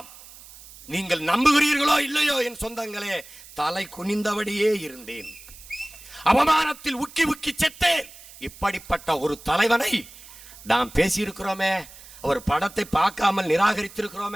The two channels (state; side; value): noise; right; hiss, 19 dB below the sound